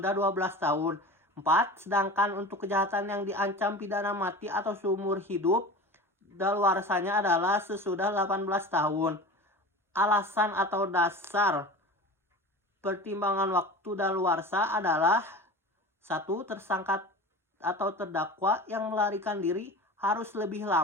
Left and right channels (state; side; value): normal; both; correlation 0.34